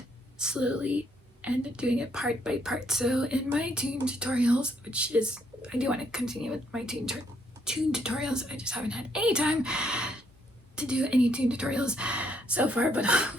slowly, and doing it part by part. So in my tune tutorials, which is, I do want to continue with my tune tutorials, I just haven't had any time to do any tune tutorials so far, but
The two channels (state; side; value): normal; both; correlation 0.71